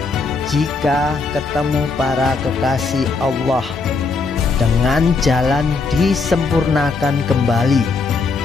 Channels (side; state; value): right; quieter; 4.2 dB